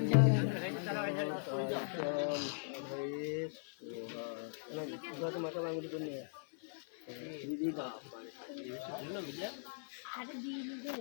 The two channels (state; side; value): silent; right; 51 dB below the other